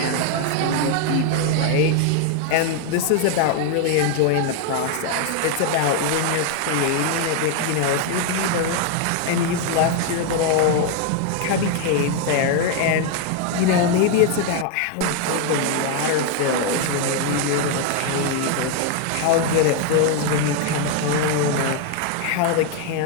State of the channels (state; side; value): different; both; correlation 0.01